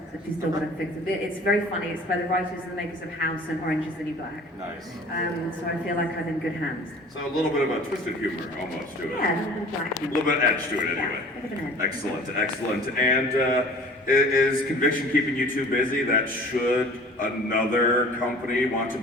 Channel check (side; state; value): both; normal; correlation 0.46